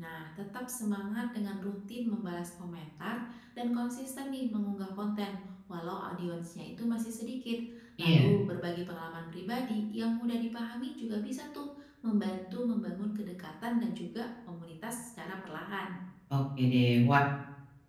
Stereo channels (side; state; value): both; identical; correlation 1.00